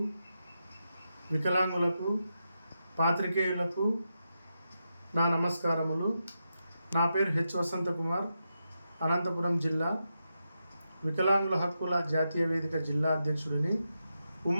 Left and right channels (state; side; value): inverted; both; correlation -0.87